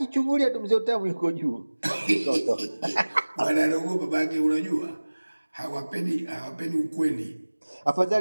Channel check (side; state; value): both; inverted; correlation -1.00